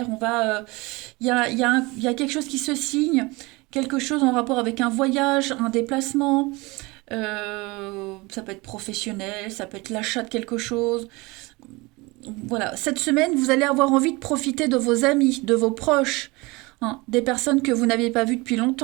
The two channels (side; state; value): left; quieter; 24.1 dB